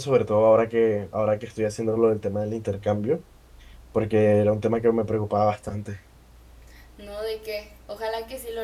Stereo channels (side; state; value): both; identical; correlation 1.00